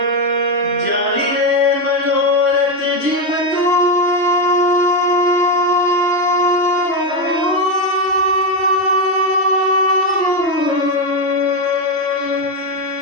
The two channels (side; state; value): right; late; 3.0 ms